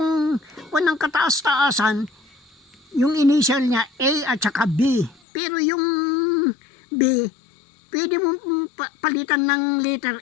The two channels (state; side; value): drops out; right; at 5.2 s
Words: ng kataas-taasan, yung initial niya A at saka B. Pero yung B, pwede mo palitan ng